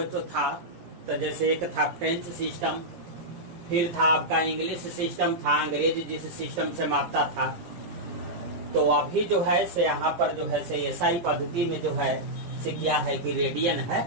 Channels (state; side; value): late; left; 17 ms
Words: जो था, तो जैसे एक था फ्रेंच सिस्टम, फिर था आपका इंग्लिश सिस्टम था, अंग्रेज जिस सिस्टम से मापता था। तो अभी जो है से यहाँ पर जो है से एसआई पद्धति में जो है से क्या है कि रेडियन